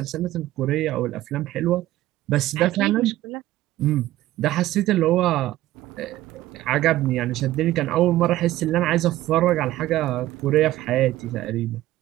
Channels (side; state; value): left; quieter; 15.4 dB